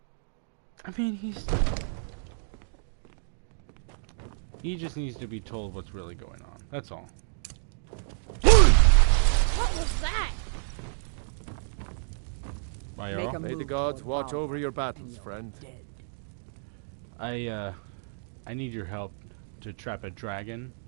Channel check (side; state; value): left; silent; digital silence